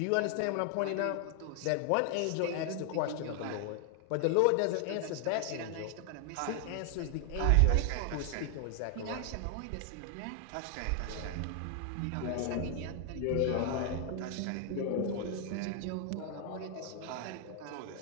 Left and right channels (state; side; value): different; both; correlation 0.00